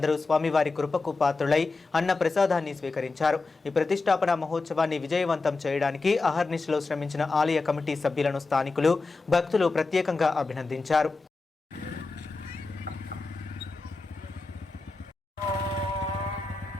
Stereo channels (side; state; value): right; quieter; 3.8 dB